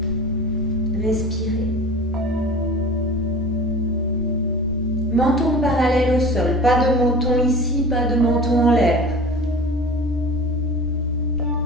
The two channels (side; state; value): left; noise; hum, 20 dB below the sound